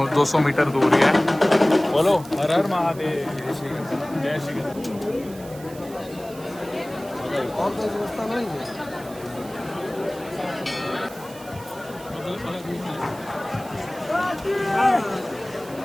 200 मीटर दूर ही है। बोलो हर हर महादेव, जय श्री कृष्ण।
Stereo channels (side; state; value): right; noise; hiss, 19 dB below the sound